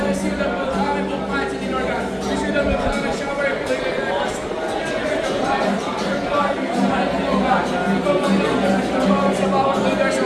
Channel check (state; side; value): identical; both; correlation 1.00